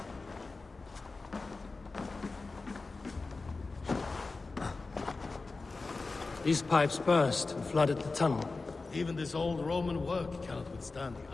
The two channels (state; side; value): quieter; right; 3.8 dB